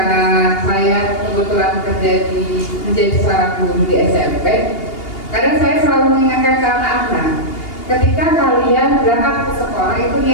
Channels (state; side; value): late; right; 2.8 ms